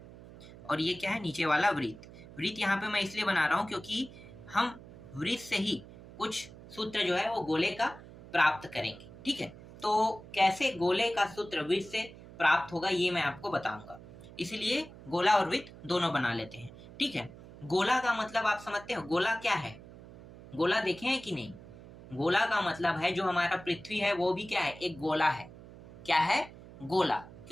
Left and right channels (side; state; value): right; noise; hum, 17 dB below the sound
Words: और ये क्या है, नीचे वाला वृत्त। वृत्त यहाँ पे मैं इसलिए बना रहा हूँ क्योंकि हम वृत्त से ही कुछ सूत्र जो है वो गोले का प्राप्त करेंगे। ठीक है, तो कैसे गोले का सूत्र वृत्त से प्राप्त होगा ये मैं आपको बताऊंगा। इसलिए गोला और वृत्त दोनों बना लेते हैं। ठीक है, गोला का मतलब आप समझते हो, गोला क्या है? गोला देखे हैं कि नहीं? गोला का मतलब है जो हमारा पृथ्वी है वो भी क्या है, एक गोला है। क्या है? गोला।